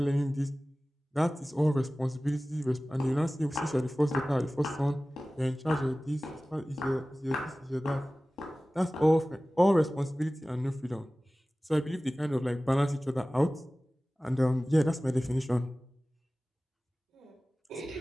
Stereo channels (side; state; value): both; normal; correlation 0.97